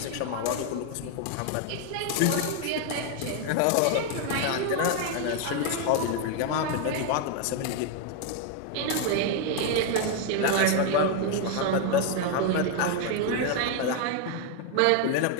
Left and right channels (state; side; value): different; both; correlation 0.01